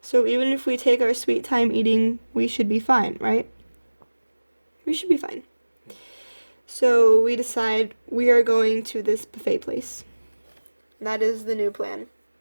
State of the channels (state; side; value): inverted; both; correlation -1.00